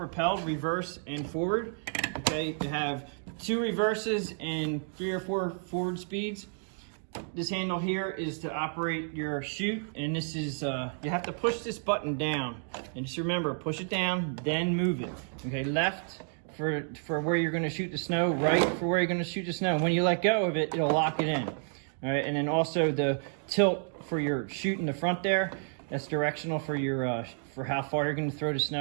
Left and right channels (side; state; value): left; silent; 57 dB below the other